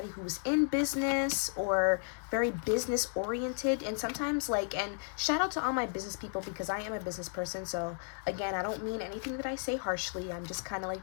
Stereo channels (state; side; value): silent; right; 55 dB below the other